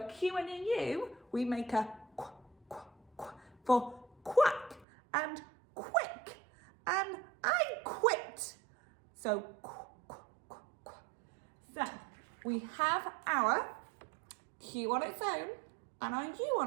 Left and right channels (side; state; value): left; drops out; at 4.9 s